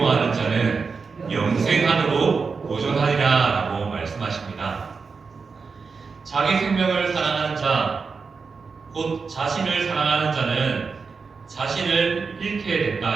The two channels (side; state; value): left; quieter; 5.0 dB